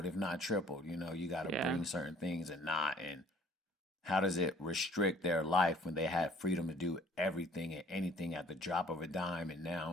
if not tripled. You got to Yeah. bring certain things and not. And how does it restrict their life when they had freedom to do everything and anything at the drop of a dime, and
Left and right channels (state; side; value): normal; both; correlation 0.56